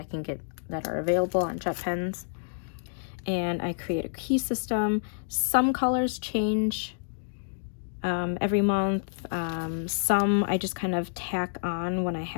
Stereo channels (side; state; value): right; silent; digital silence